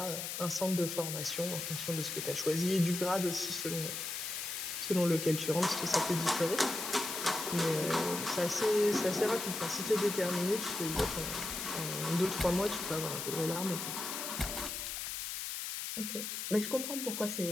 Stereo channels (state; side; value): noise; left; hiss, 4 dB below the sound